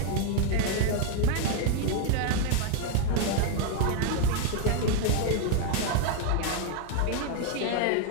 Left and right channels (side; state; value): both; different; correlation 0.00